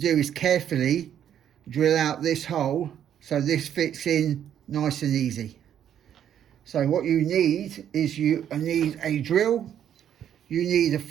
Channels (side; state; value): left; quieter; 9.8 dB